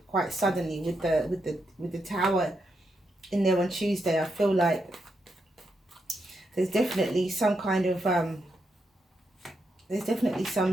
quite suddenly? With the Tower in there on Tuesday, I feel like there's definitely some kind of there's definitely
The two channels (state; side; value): normal; both; correlation 0.82